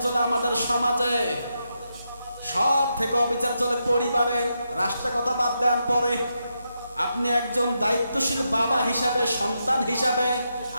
চলে আমাদের সমাজে, সব থেকে অবিচার চলে পরিবারে। রাষ্ট্রের কথা বাদ দেন পরে। আপনি একজন দায়িত্বশীল বাবা হিসাবে, সন্তান হিসাবে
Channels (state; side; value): inverted; both; correlation -0.84